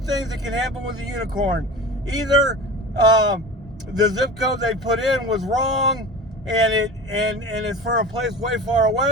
that can happen with a unicorn. Either the zip code they put in was wrong, and it's for a place way far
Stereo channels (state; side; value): normal; both; correlation 0.33